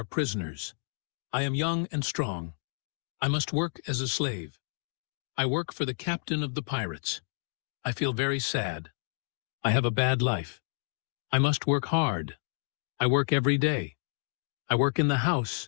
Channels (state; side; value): silent; right; 58 dB below the other